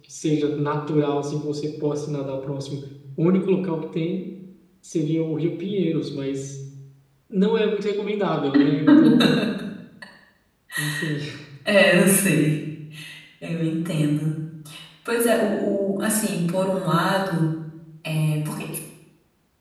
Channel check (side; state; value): both; identical; correlation 1.00